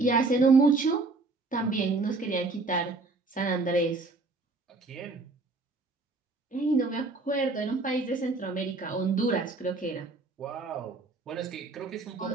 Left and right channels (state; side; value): quieter; left; 3.5 dB